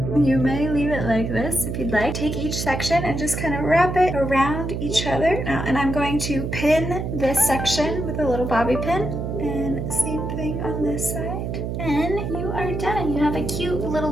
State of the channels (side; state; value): right; noise; hum, 3 dB below the sound